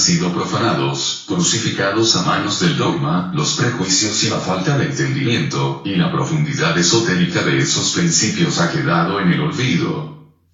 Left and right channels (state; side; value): identical; both; correlation 1.00